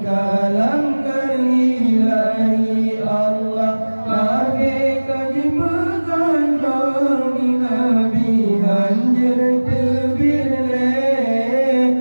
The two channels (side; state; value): both; inverted; correlation -1.00